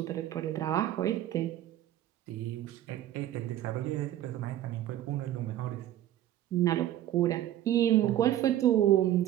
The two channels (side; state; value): left; quieter; 12.7 dB